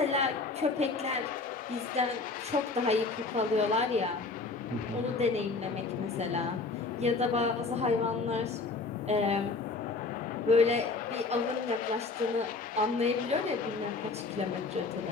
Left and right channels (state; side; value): quieter; right; 3.9 dB